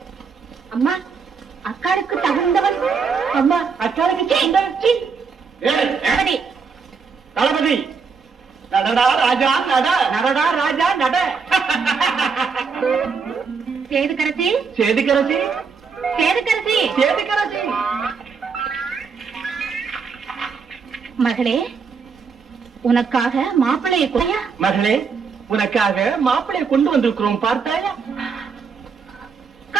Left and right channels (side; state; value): left; quieter; 5.5 dB